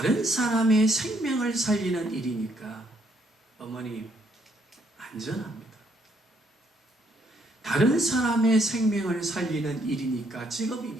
사람의 생명을 살리는 일이니까 어머니 안전합니다. 다른 사람의 생명을 살리는 일이니까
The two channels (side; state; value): both; normal; correlation 0.71